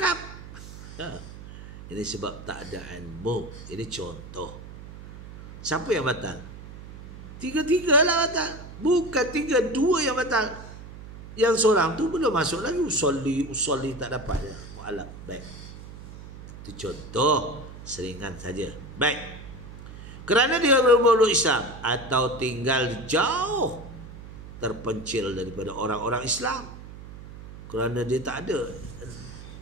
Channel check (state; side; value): noise; right; hum, 14 dB below the sound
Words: Ini sebab tak ada ilmu. Ini contoh. Siapa yang batal? Tiga-tiga lah batal. Bukan tiga, dua yang batal. Yang seorang tu belum masuk lagi. Usolli tak dapat je. Mu'alaf. Baik. Itu contoh. Seringan saja. Baik. Kerana dia bermuluk Islam atau tinggal jauh, terpencil daripada orang-orang Islam. Kerana dia tak ada